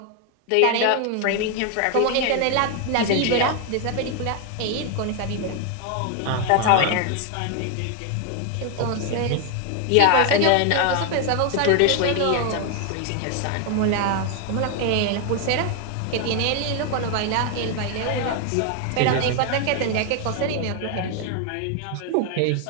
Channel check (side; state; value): both; different; correlation 0.00